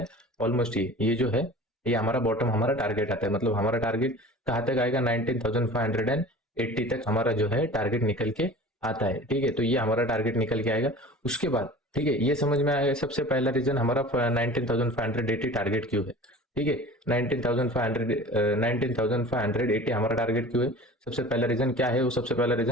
ऑलमोस्ट ये जो है, ये हमारा बॉटम हमारा टारगेट आता है, मतलब हमारा टारगेट कहाँ तक आएगा, 19,580 तक हमारा जो है टारगेट निकल के आता है। ठीक है, तो ये हमारा टारगेट निकल के आएगा। उसके बाद ठीक है, ये समझ में आएगा, सबसे पहला रीजन हमारा 19,580 टारगेट क्यों है। ठीक है, 19,580 हमारा टारगेट क्यों है, सबसे पहला रीजन क्या है, वो सबसे पहला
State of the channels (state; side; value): normal; both; correlation 0.40